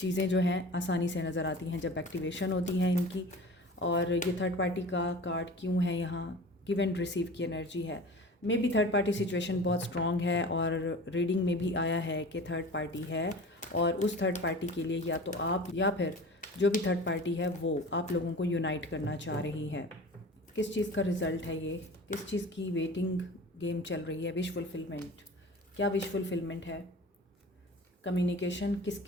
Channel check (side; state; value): both; normal; correlation 0.38